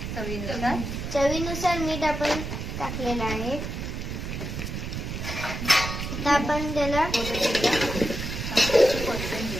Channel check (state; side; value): noise; right; rumble, 5 dB below the sound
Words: चवीनुसार मीठ आपण टाकलेलं आहे। आता आपण त्याला